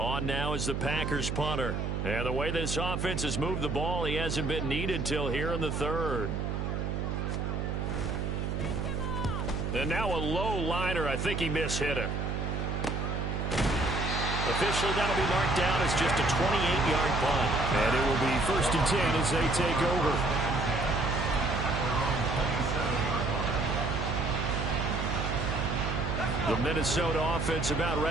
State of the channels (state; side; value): noise; right; hum, 1 dB below the sound